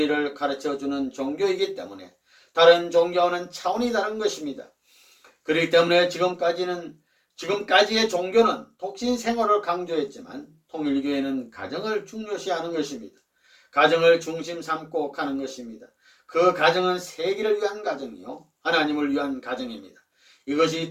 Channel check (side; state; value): both; identical; correlation 1.00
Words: 가르쳐주는 종교이기 때문에 다른 종교와는 차원이 다른 것입니다. 그렇기 때문에 지금까지의 종교는 독신 생활을 강조했지만 통일교회는 가정을 중요시하는 것입니다. 가정을 중심 삼고 가는 것입니다. 그 가정은 세계를 위한 가정이요, 하나님을 위한 가정입니다. 이것이